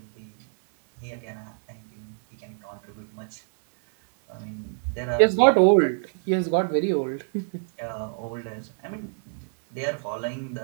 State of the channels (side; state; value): left; silent; 61 dB below the other